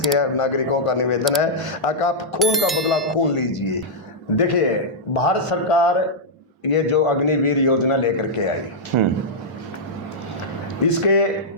नागरिकों का निवेदन है कि आप खून का बदला खून लीजिए। देखिए, भारत सरकार ये जो अग्निवीर योजना लेकर के आई, इसके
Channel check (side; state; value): both; normal; correlation -0.08